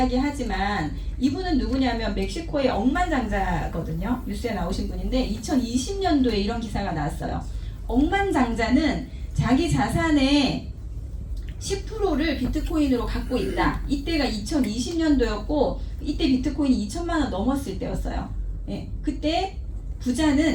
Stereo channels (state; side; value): identical; both; correlation 1.00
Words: 이분은 누구냐면 멕시코의 억만장자거든요. 뉴스에 나오신 분인데 2020년도에 이런 기사가 나왔어요. 억만장자는 자기 자산의 10%를 비트코인으로 갖고 있다. 이때가 2020년도였고 이때 비트코인이 2천만 원 넘었을 때였어요. 예, 그때